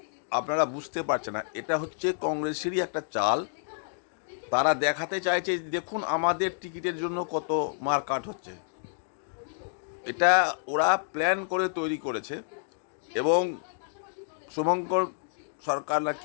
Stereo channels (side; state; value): right; silent; digital silence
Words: আপনারা বুঝতে পারছেন না, এটা হচ্ছে কংগ্রেসেরই একটা চাল। তারা দেখাতে চাইছে দেখুন আমাদের টিকিটের জন্য কত মারকাট হচ্ছে। এটা ওরা প্ল্যান করে তৈরি করেছে এবং শুভঙ্কর সরকার না